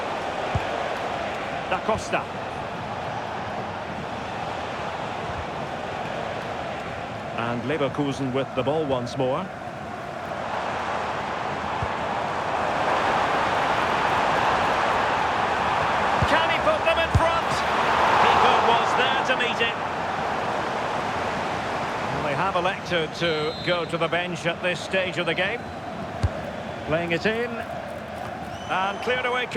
Da Costa. And Leverkusen with the ball once more. Can he put them in front? Keeper was there to meet it. Well, they have elected to go to the bench at this stage of the game. Playing it in. And cleared away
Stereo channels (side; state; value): both; identical; correlation 1.00